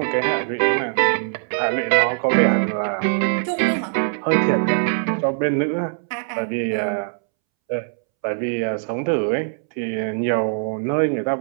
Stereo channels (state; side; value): silent; left; 65 dB below the other